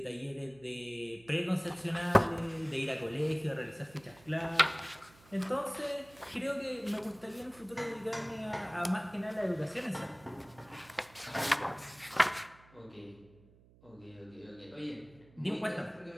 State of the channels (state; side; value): noise; right; hum, 26 dB below the sound